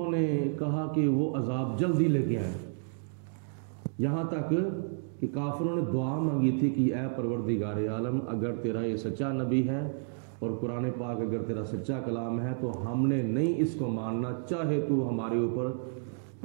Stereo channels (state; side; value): silent; left; digital silence